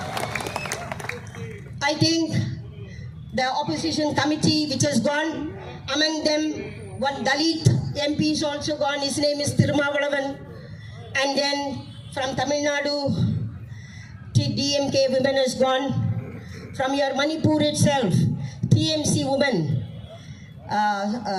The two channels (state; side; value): identical; both; correlation 1.00